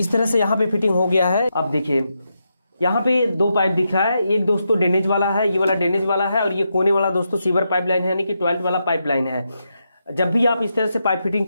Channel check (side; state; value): both; inverted; correlation -0.84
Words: तरह से यहाँ पे फिटिंग हो गया है। अब देखिए यहाँ पे 2 पाइप दिख रहा है, एक दोस्तों ड्रेनेज वाला है, ये वाला ड्रेनेज वाला है, और ये कोने वाला दोस्तों सीवर पाइपलाइन है, यानी कि टॉयलेट वाला पाइपलाइन है। जब भी आप इस तरह से पाइप फिटिंग